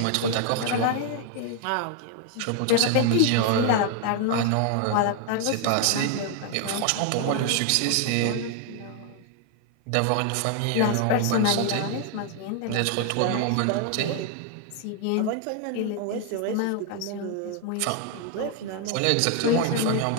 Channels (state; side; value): different; both; correlation 0.00